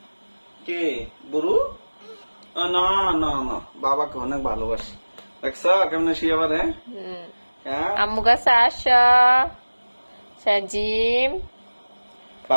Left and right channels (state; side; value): inverted; both; correlation -1.00